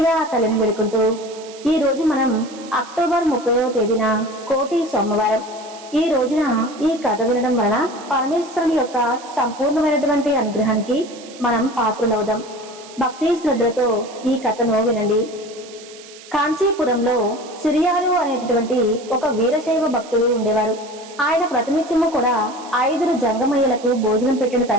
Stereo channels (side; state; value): right; noise; hiss, 19 dB below the sound